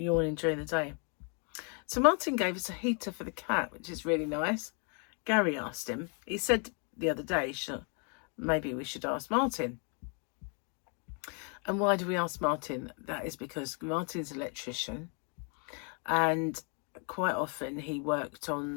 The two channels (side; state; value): right; quieter; 37.9 dB